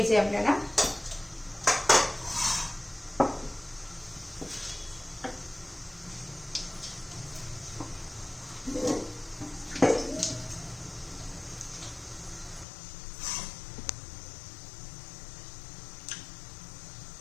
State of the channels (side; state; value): right; drops out; at 12.7 s